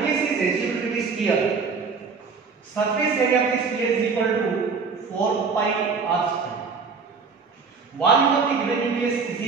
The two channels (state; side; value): quieter; left; 5.0 dB